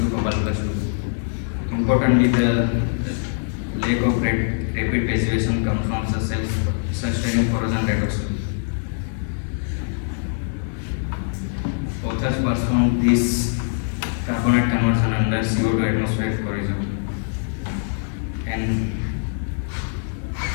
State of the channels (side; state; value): right; silent; digital silence